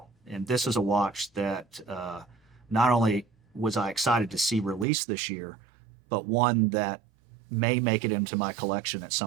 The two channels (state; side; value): drops out; left; at 4.9 s